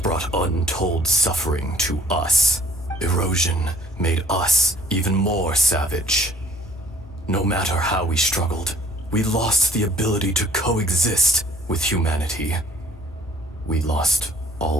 brought untold suffering to us. Erosion made us even more savage. No matter how we struggled, we lost the ability to coexist with humanity. We lost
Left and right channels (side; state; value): both; normal; correlation 0.56